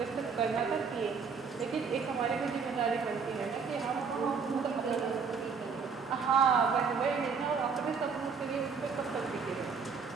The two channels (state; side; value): quieter; left; 5.6 dB